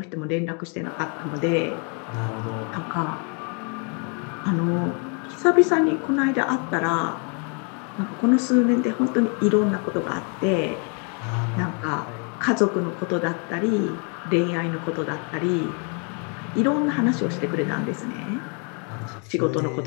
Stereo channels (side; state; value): right; quieter; 37.2 dB